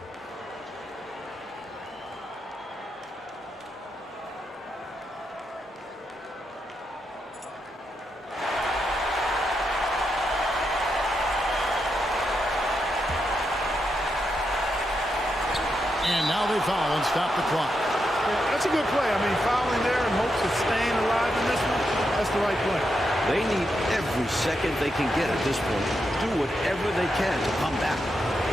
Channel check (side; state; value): both; normal; correlation 0.84